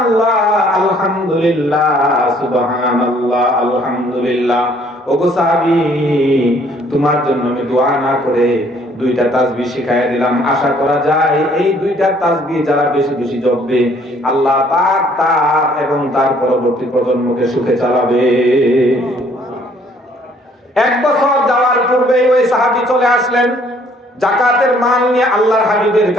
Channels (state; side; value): normal; both; correlation 0.61